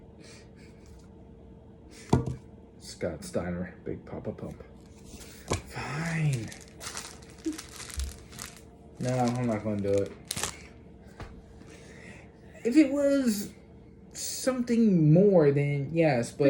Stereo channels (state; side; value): identical; both; correlation 1.00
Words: Scott Steiner, Big Papa Pump. Fine. No, I'm not going to do it. If it was something more, then yes,